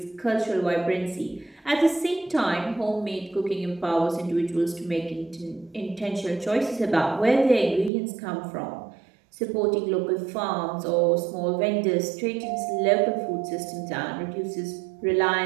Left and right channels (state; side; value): drops out; left; at 7.9 s